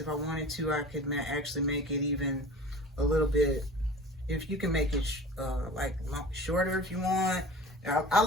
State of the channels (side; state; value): both; normal; correlation 0.40